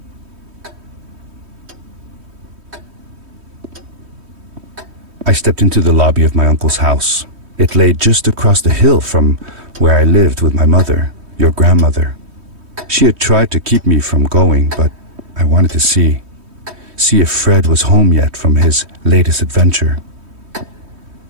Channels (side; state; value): left; late; 3.2 ms